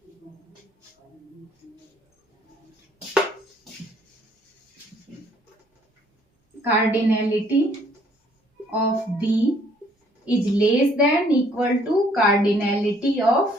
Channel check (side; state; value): both; normal; correlation 0.63